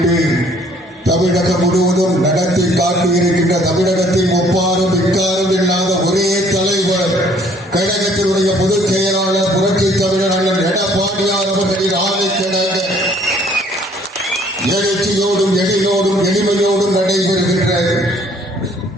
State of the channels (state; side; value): normal; both; correlation 0.60